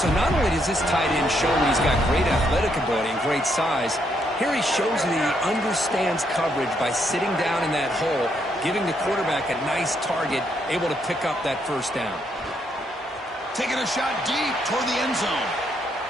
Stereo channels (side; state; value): both; normal; correlation 0.75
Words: not only does this tight end show that he's got great athletic ability and great size, here he shows that he understands coverage by sitting down in that hole, giving the quarterback a nice target, able to pick up that first down. Taking a shot deep toward the end zone.